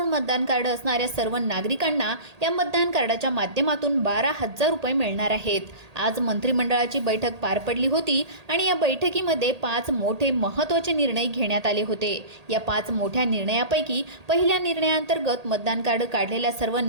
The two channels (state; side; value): late; left; 1.8 ms